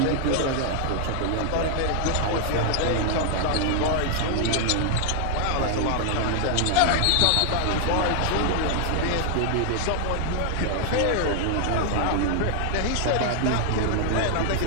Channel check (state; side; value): different; both; correlation 0.00